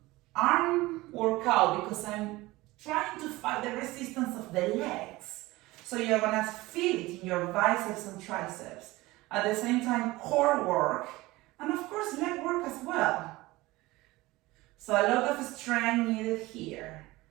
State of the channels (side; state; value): left; quieter; 19.8 dB